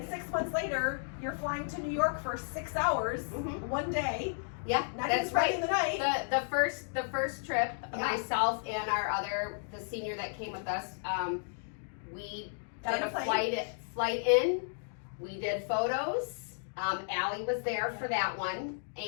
6 months later, you're flying to New York for 6 hours, one day. Yeah, Not that's even spending right. the night. The first trip, Yeah. myself and the senior that came with us, we Got did on a a plane. flight in. We did photos. Allie was there for that one,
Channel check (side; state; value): right; silent; digital silence